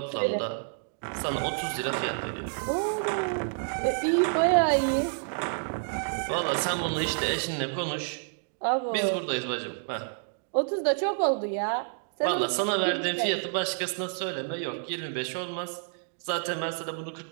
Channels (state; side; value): silent; left; digital silence